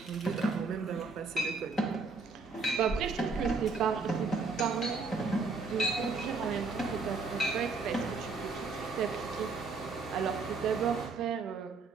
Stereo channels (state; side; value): quieter; left; 4.2 dB